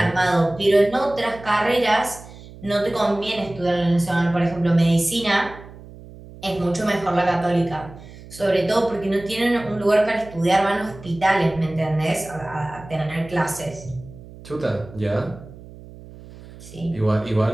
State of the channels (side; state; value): right; noise; hum, 18 dB below the sound